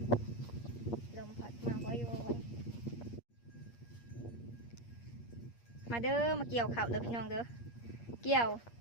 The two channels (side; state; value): right; late; 8.5 ms